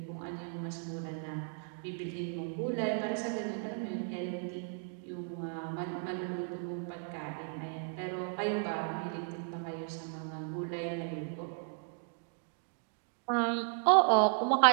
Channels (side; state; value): left; silent; 54 dB below the other